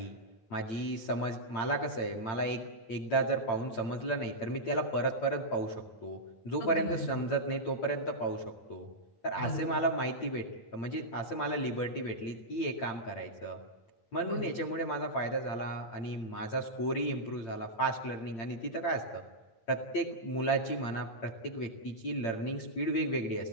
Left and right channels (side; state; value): right; late; 8.8 ms